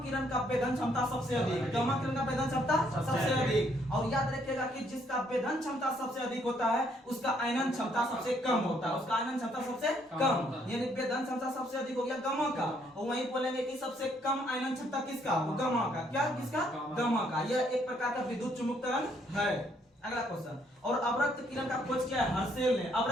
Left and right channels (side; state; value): both; normal; correlation 0.69